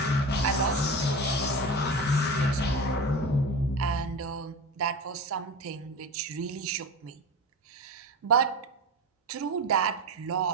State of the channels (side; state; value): both; normal; correlation 0.27